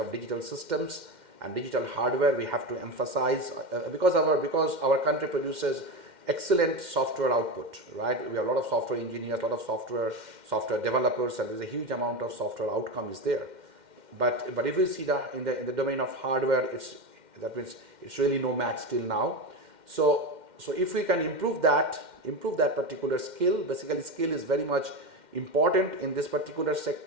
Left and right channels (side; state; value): left; late; 2.1 ms